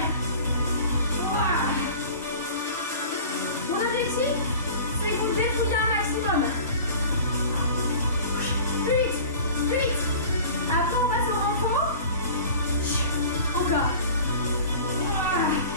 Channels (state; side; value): inverted; both; correlation -0.41